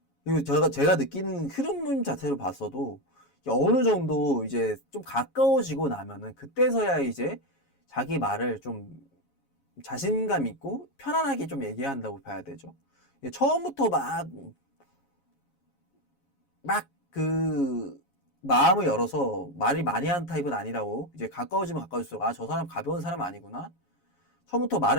그리고 제가 느끼는 흐름 자체를 봤어도 어느 정도 이제 좀 가까워지고 나면은 그때서야 이제 자기 말을 좀 자신감 있고 편안하게 좀 얘기한다고 봐야 되죠. 처음부터 막 그 마음을 열어서 말이 많이 하는 타입은 아니라고. 이제 가까워지면 가까워질수록 아, 저 사람 가벼운 사람 아니구나. 처음부터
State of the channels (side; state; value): right; late; 7.2 ms